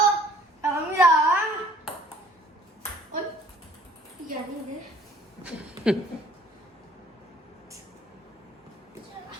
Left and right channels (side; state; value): both; normal; correlation 0.56